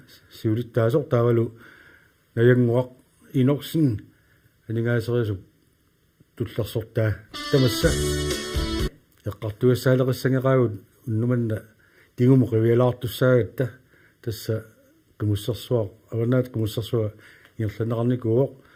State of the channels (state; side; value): identical; both; correlation 1.00